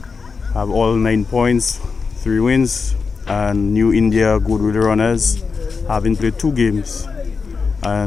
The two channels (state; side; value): quieter; right; 5.0 dB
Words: have all 9 points, 3 wins, and New India Goodwill Runners having played 2 games